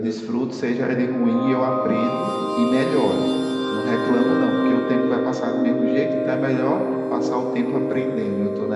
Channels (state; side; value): identical; both; correlation 1.00